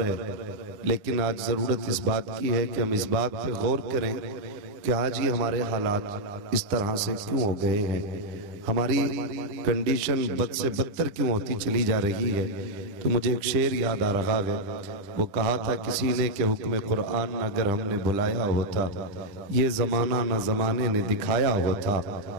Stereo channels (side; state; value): left; late; 10 ms